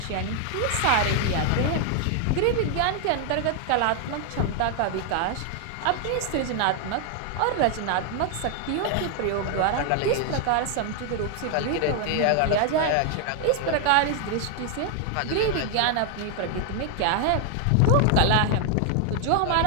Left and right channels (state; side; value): different; both; correlation 0.00